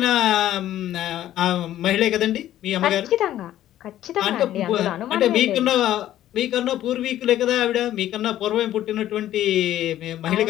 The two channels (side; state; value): right; quieter; 12.8 dB